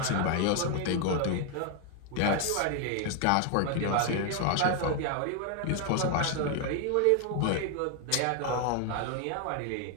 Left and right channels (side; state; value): both; different; correlation 0.01